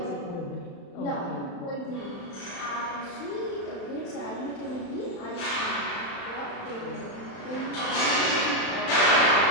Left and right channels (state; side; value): late; right; 35 ms